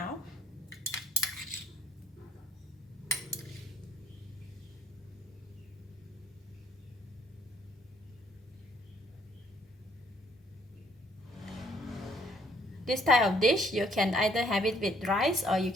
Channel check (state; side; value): normal; both; correlation 0.65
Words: This type of dish, you can either have it with rice or you